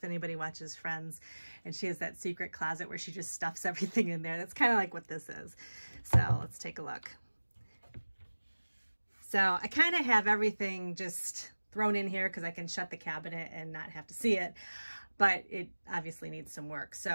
anybody watches Friends, and she has that secret closet where she just stuffs everything in there. That's kind of like what this is. So let's take a look. So I kind of have everything just thrown in here because I can shut the cabinet and not have to see it, but it obviously needs some work.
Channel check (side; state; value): both; inverted; correlation -1.00